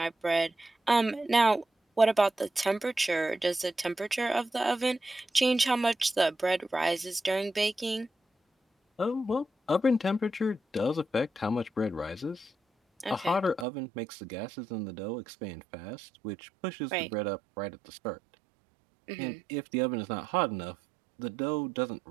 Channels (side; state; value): left; drops out; at 13.7 s